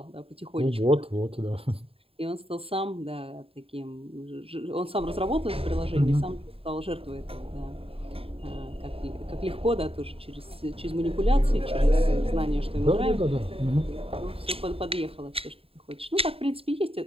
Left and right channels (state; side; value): late; left; 0.27 ms